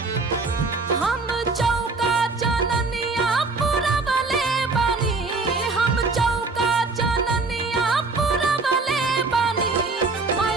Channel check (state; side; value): quieter; left; 3.8 dB